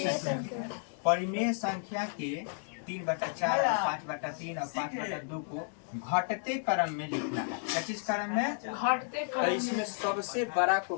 परिमेय संख्या के 3/4 और 5/3 और 5/2 को घटते क्रम में लिखना है। क्या चीज क्रम में, घटते क्रम। तो इसमें सबसे बड़ा को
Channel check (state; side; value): silent; right; digital silence